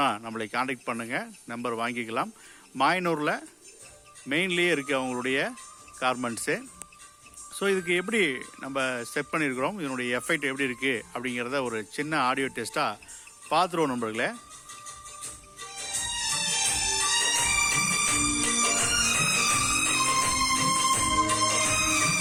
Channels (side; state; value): both; identical; correlation 1.00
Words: நம்மளை காண்டாக்ட் பண்ணுங்கள், நம்பர் வாங்கிக்கலாம். மாயனூரில் மெயின்லேயே இருக்குது அவங்களுடைய கார்மெண்ட்ஸு. ஸோ இதுக்கு எப்படி நம்ம செட் பண்ணியிருக்கிறோம், இதனுடைய எஃபெக்ட் எப்படி இருக்குது அப்படிங்கிறத ஒரு சின்ன ஆடியோ டெஸ்ட்டாக பார்த்துருவோம் நண்பர்களே.